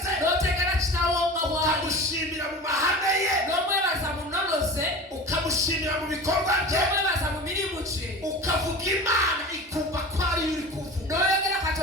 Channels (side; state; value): both; normal; correlation 0.35